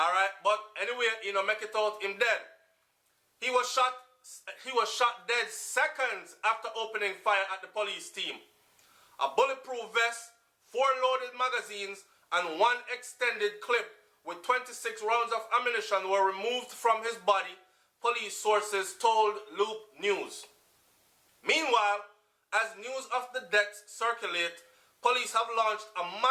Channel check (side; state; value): both; identical; correlation 1.00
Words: But anyway, make it out him dead. He was shot dead seconds after opening fire at the police team. A bulletproof vest, 4 loaded magazines, and 1 extended clip with 26 rounds of ammunition were removed from his body, police sources told Loop News. Meanwhile, as news of the deaths circulate, police have launched a